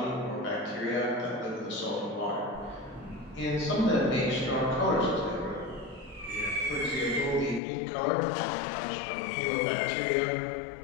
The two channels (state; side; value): drops out; right; at 7.6 s